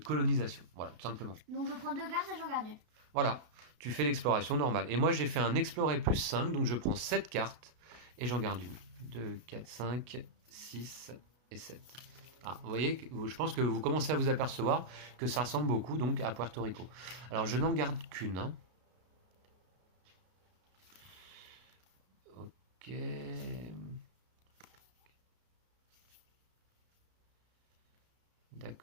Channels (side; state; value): left; late; 32 ms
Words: Voilà, tout simplement. Donc je prends 2 cartes et j'en garde une. Voilà, tu fais l'exploration normale. Et moi j'ai fait un explorer plus 5, donc je prends 7 cartes et j'en garde une. 2, 4, 5, 6 et 7. Ah, vous voyez, je pense que vous commencez à vous apercevoir que ça ressemble beaucoup donc à Puerto Rico. Alors je n'en garde qu'une. Hein. Ok.